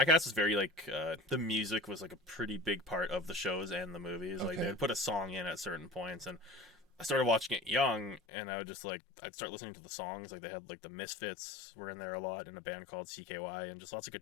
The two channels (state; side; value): drops out; right; at 8.2 s